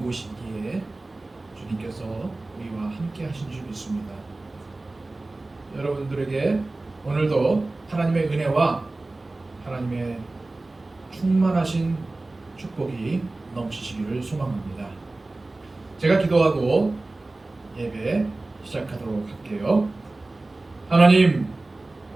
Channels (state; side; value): quieter; left; 3.0 dB